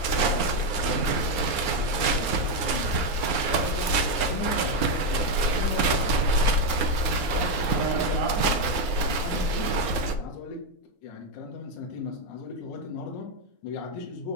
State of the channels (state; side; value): late; right; 9.5 ms